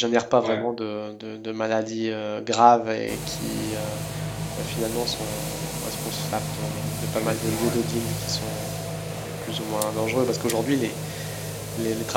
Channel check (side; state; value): both; identical; correlation 1.00